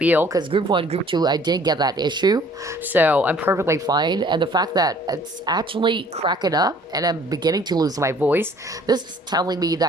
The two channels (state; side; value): normal; both; correlation 0.55